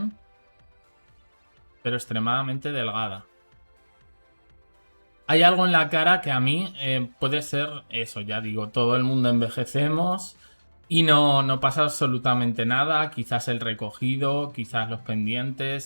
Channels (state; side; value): inverted; both; correlation -1.00